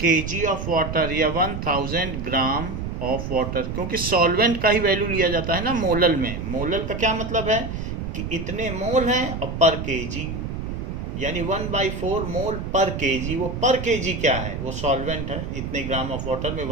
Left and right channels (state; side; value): noise; right; rumble, 5 dB below the sound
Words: of water या 1000 ग्राम ऑफ वाटर, क्योंकि सॉल्वेंट का ही वैल्यू लिया जाता है ना मोलल में। मोलल का क्या मतलब है कि इतने मोल हैं और पर केजी, यानी 1/4 मोल पर केजी। वो पर केजी क्या है, वो सॉल्वेंट है। इतने ग्राम ऑफ वाटर में